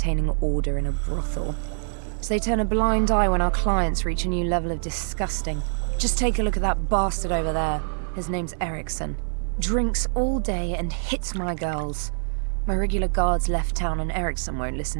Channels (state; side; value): silent; left; 56 dB below the other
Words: order in a brothel. So they turn a blind eye when our clients reach a new level of disgusting. Just take a look at that bastard over there. His name's Erickson. Drinks all day and hits my girls. My regular guards left town and Erickson won't